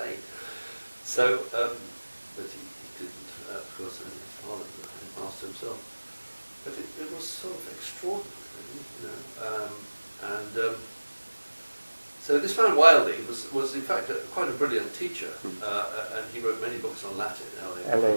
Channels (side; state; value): both; inverted; correlation -1.00